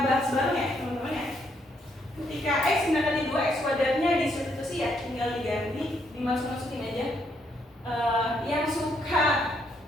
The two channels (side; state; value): both; normal; correlation 0.74